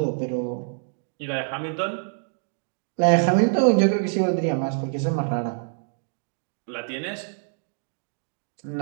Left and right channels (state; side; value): silent; left; digital silence